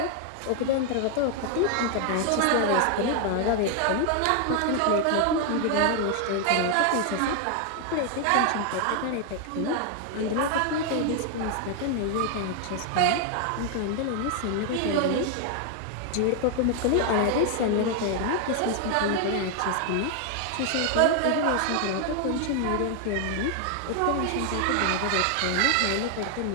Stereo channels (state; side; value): different; both; correlation 0.00